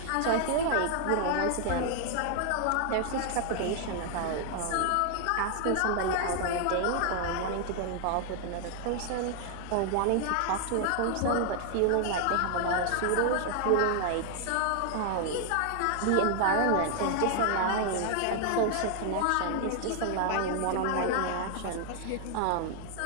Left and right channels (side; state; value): both; different; correlation 0.00